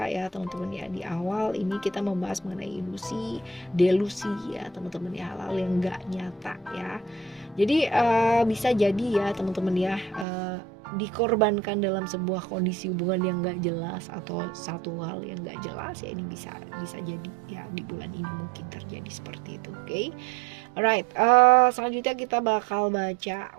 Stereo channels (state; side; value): drops out; left; at 10.2 s